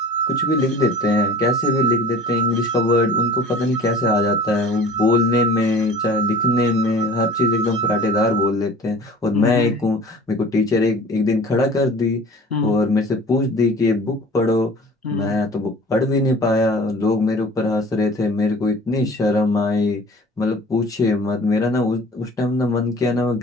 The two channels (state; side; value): normal; both; correlation 0.44